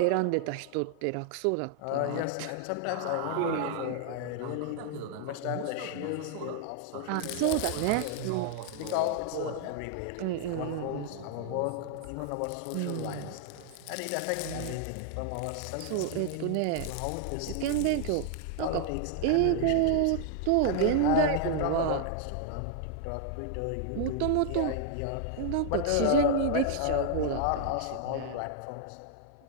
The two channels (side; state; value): both; different; correlation 0.00